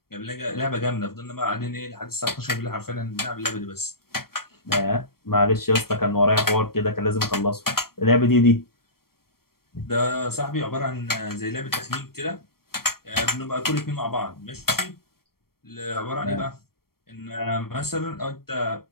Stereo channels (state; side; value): late; right; 0.94 ms